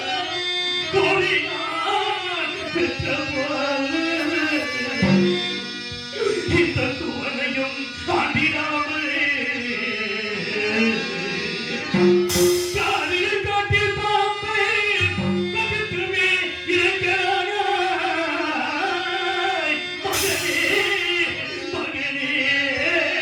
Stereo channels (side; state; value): both; identical; correlation 1.00